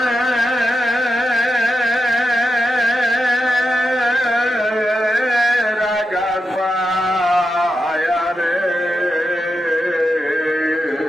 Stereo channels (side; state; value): both; normal; correlation 0.88